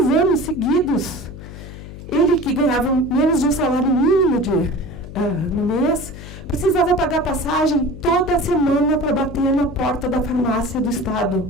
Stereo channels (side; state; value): left; noise; hum, 13 dB below the sound